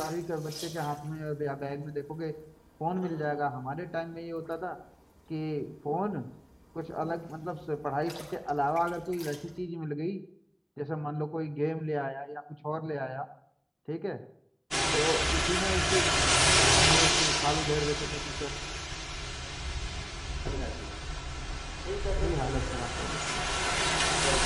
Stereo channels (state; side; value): identical; both; correlation 1.00